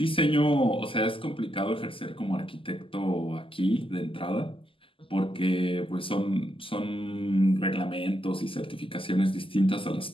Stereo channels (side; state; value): right; late; 0.25 ms